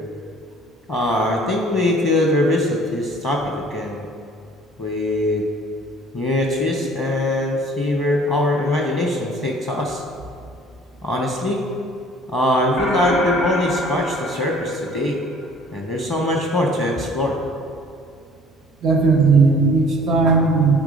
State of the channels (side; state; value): both; normal; correlation 0.52